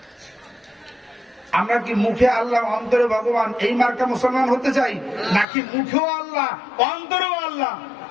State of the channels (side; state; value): right; drops out; at 5.5 s